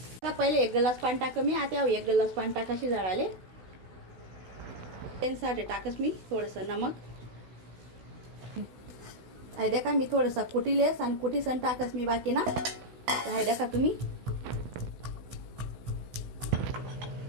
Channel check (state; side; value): late; left; 16 ms